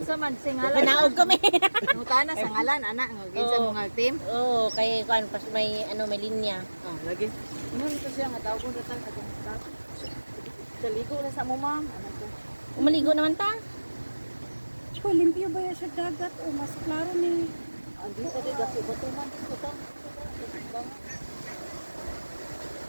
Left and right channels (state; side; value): inverted; both; correlation -1.00